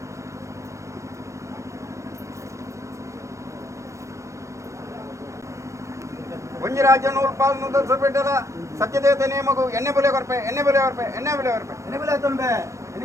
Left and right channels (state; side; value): late; left; 0.15 ms